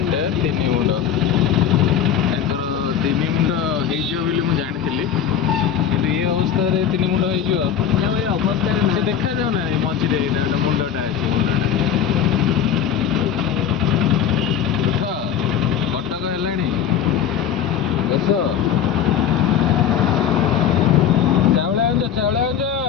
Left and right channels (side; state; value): right; quieter; 8.8 dB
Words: ତିନି ମୁଣ୍ଡ। ତାଙ୍କର ତିନି ମୁଣ୍ଡ ହେଇଯିବ ବୋଲି ମୁଁ ଜାଣିଥିଲି, କିନ୍ତୁ ଏ ଅବସ୍ଥାରେ ତିନି ମୁଣ୍ଡ ହେଇଯିବ ଏ ଅବସ୍ଥାରେ ସେ ଦେଖାଯାଉ ନା ମଝିରେ ଏଇଟା ଗୋଟେ ମୁଣ୍ଡଟା ଅଛି। ମୁଣ୍ଡଟା ଉଠ, କଟକ ହେଲାଣି ବେଶ। ଚାଉଳଗଞ୍ଜ, ଚାଉଳଗଞ୍ଜ,